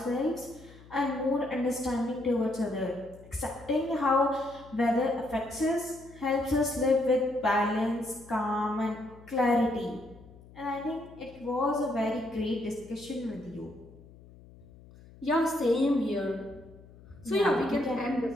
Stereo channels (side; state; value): left; noise; hum, 21 dB below the sound